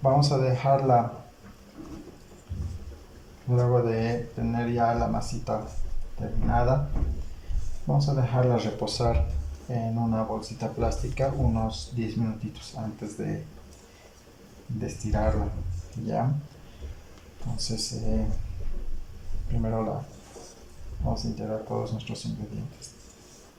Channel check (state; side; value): identical; both; correlation 1.00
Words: Vamos a dejarla, luego de tener ya la masita terminada, vamos a dejarla reposar en una bolsita plástica unos 10 minutitos antes de estirarla, ¿ya? Entonces, primero vamos a integrar todos nuestros ingredientes.